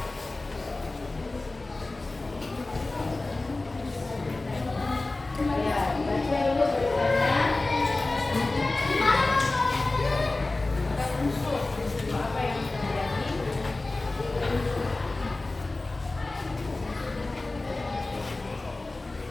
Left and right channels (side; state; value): right; quieter; 3.1 dB